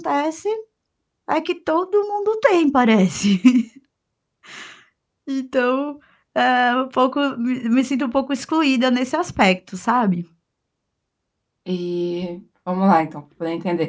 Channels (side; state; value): both; identical; correlation 1.00